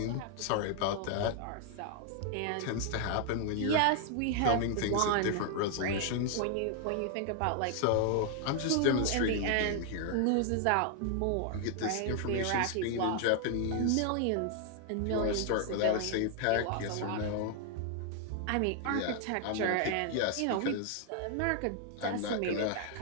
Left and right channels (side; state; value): both; different; correlation 0.00